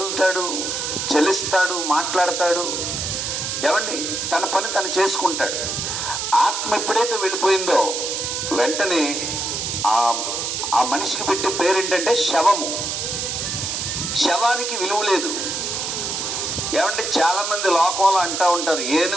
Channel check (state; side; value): noise; right; hiss, 2 dB below the sound